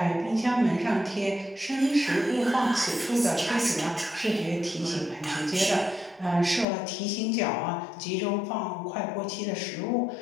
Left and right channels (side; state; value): right; drops out; at 6.7 s